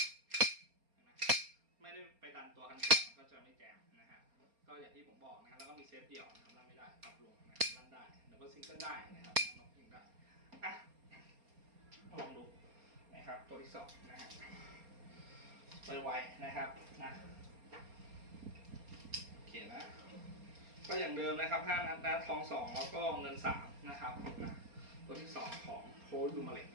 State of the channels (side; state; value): left; late; 4.3 ms